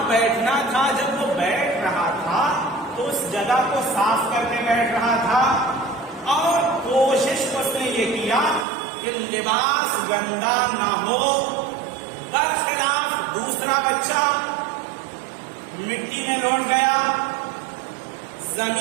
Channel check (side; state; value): left; drops out; at 8.7 s